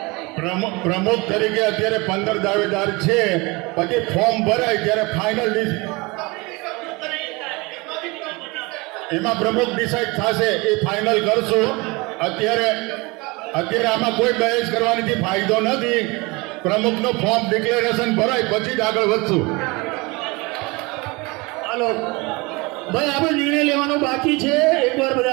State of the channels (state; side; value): quieter; left; 25.4 dB